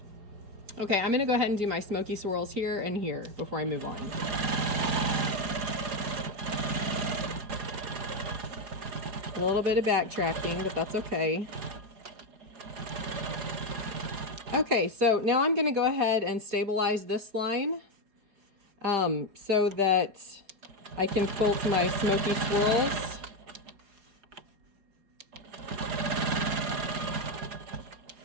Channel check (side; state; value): left; late; 4.8 ms